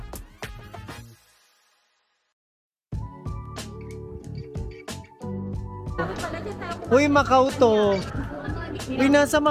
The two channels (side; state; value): both; identical; correlation 1.00